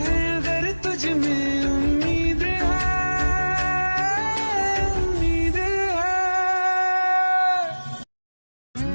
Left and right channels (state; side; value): inverted; both; correlation -1.00